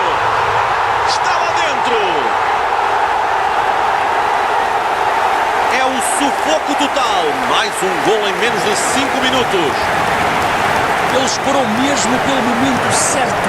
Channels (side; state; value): both; identical; correlation 1.00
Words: Está lá dentro! É o sufoco total. Mais um gol em menos de 5 minutos. Ele esperou mesmo pelo momento certo